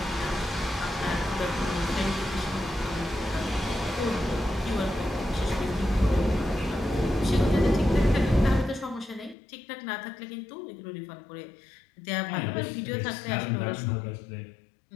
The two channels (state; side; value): drops out; right; at 9.3 s